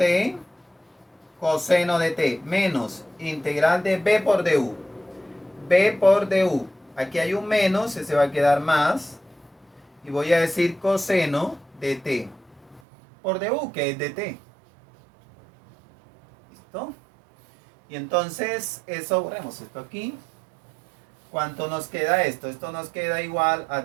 coseno de t, menos integral de b por du. B por du. Aquí hay un menos, se va a quedar más. Y voy a decir coseno de t por du, que es de t. ¿Listo? Y entonces, eso, borremos esto aquí. ¿Cuánto nos queda esto? Esto nos queda igual a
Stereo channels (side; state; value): left; drops out; at 12.8 s